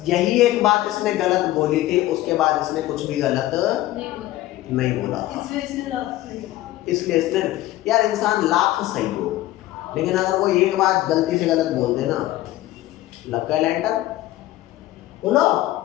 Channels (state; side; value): quieter; right; 15.8 dB